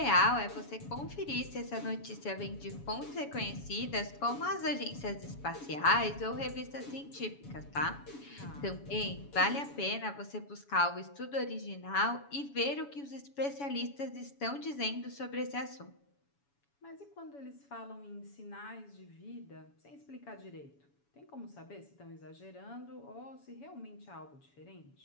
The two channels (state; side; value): late; right; 7.1 ms